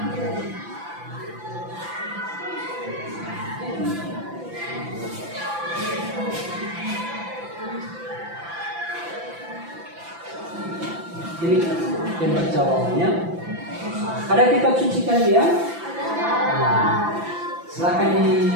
Ini lebar jawabannya. Ada kitab suci kalian? Nah, silakan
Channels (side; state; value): left; late; 5.9 ms